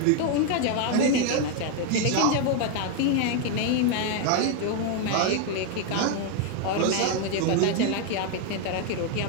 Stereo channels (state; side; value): different; both; correlation 0.01